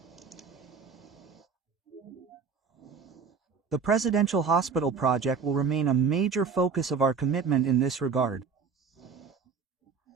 The Presidential Hospital project will remain a major focus of our commitment in this regard.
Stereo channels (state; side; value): quieter; left; 5.6 dB